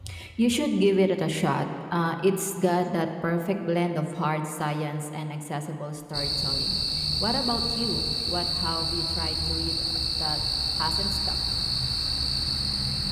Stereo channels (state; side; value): identical; both; correlation 1.00